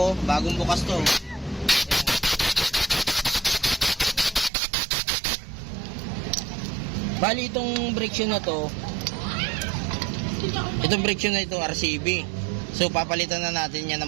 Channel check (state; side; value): drops out; left; at 4.5 s